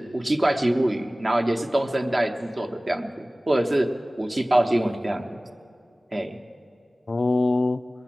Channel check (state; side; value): normal; both; correlation 0.98